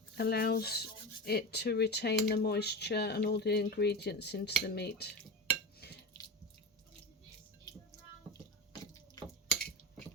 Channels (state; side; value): normal; both; correlation 0.25